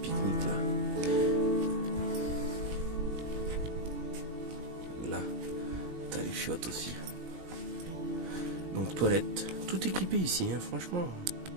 là. Là, t'as les chiottes aussi. Donc toilette, tout équipé ici, hein, franchement.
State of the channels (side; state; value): left; late; 21 ms